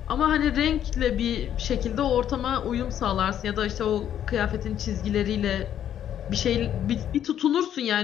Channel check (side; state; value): right; quieter; 10.2 dB